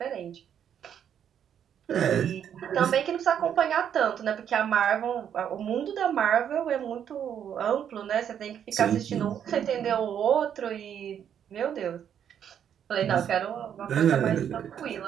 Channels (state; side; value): quieter; left; 8.9 dB